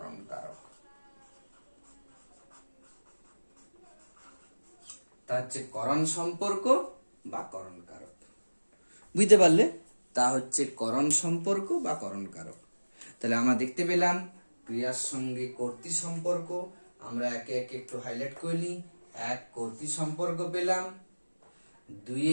কারক। তা হচ্ছে করণ সম্পর্ক বা করণ কারক। বুঝতে পারলে? তা হচ্ছে করণ সম্পর্ক বা করণ কারক। তাহলে আমরা দেখতে পেলাম ক্রিয়ার সঙ্গে কর্তৃ সম্পর্ক। আমরা একে একে একটু হাইলাইট করে নিই। 1 কর্তৃ সম্পর্ক পেলাম,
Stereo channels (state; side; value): inverted; both; correlation -1.00